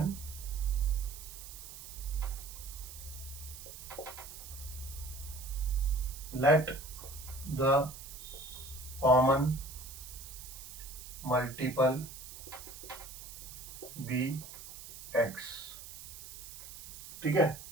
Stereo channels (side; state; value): right; noise; hiss, 12 dB below the sound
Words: let the common multiple be x। ठीक है,